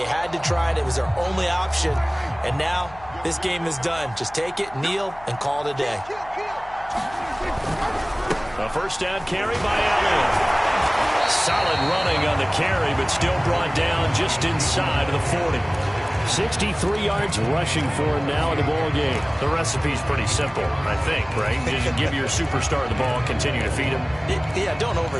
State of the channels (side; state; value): left; noise; hum, 21 dB below the sound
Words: had to try it. It was their only option. And now this game is done. Just take it, kneel, and call it a day. A first down carry by Elliott. Solid running on the carry, but still brought down just inside of the 40. 63 yards rushing for him now in the ball game. The recipe's pretty simple, I think, right? Just give your superstar the ball, continue to feed him. Yeah, don't